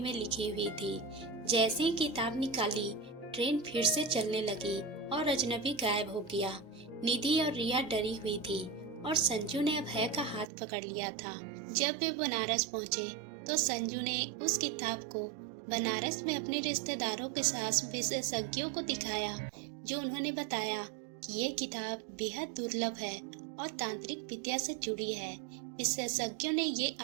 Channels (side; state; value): left; drops out; at 10.5 s